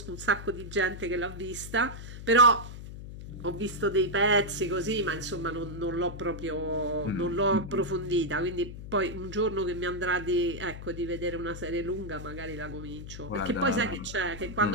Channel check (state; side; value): noise; left; hum, 11 dB below the sound